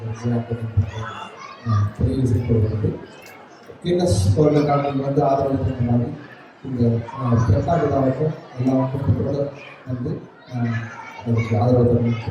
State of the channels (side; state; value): both; identical; correlation 1.00